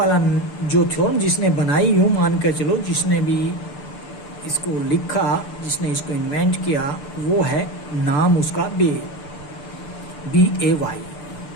जो थ्योरम जिसने बनाई, यूं मान कर चलो जिसने भी इसको लिखा, जिसने इसको इन्वेंट किया, वो है नाम उसका BAY।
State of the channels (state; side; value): late; right; 6.8 ms